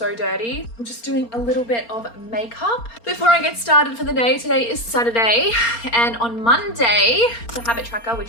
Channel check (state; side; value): late; right; 4.3 ms